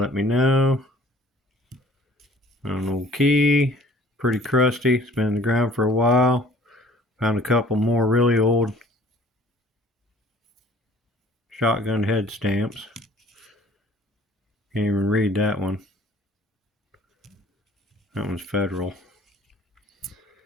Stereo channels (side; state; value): both; normal; correlation 0.52